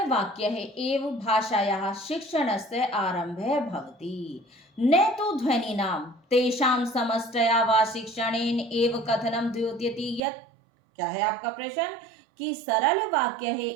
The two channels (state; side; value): drops out; left; at 10.2 s